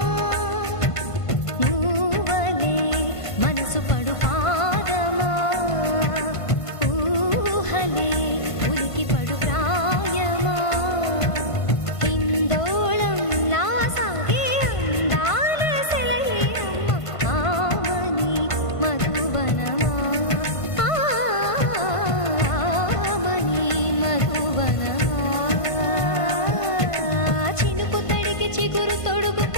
నువ్వలే మనసు పడు పాదమా ఊహలే ఉలికి పడు ప్రాయమా హిందోళం నా సాగే అందాల సెలయేరమ్మ ఆమని మధువనమా ఆమని మధువనమా చినుకు తడికి చిగురు తొడుగు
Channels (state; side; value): late; right; 1.5 ms